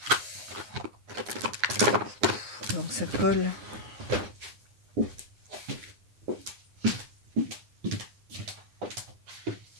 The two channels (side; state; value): left; late; 9.9 ms